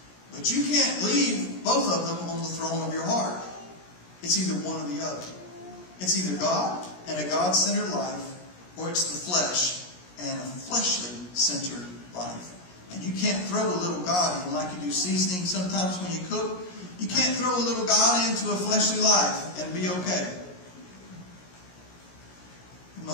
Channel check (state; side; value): late; right; 17 ms